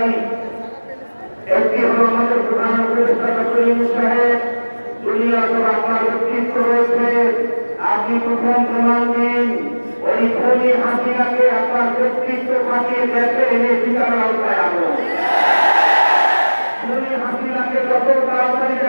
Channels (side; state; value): both; inverted; correlation -1.00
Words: একটি হল আমাদের প্রধান উপদেষ্টা ডক্টর ইউনূস সাহেব, দুনিয়া তো আপনার ব্যক্তিত্ব রয়েছে, আপনি প্রথম প্রমাণ দিন ওই খুনি হাসিনাকে আপনার ব্যক্তিত্ব কাটিয়ে দেশে এনে বিচার আওতায় আনো। খুনি হাসিনাকে যত তাড়াতাড়ি